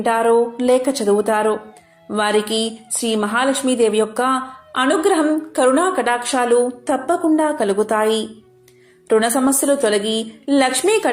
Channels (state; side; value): identical; both; correlation 1.00